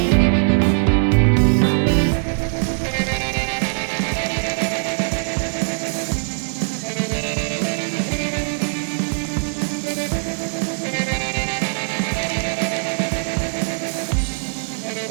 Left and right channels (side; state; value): left; silent; digital silence